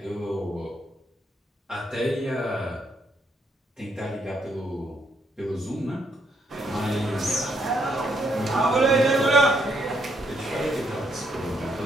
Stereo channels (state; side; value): normal; both; correlation 0.74